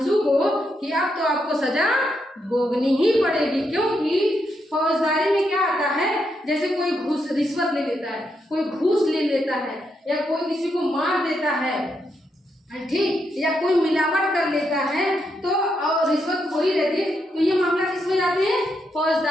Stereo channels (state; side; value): normal; both; correlation 0.81